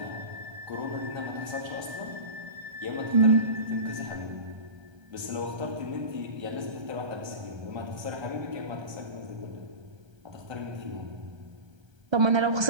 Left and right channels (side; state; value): left; late; 1.3 ms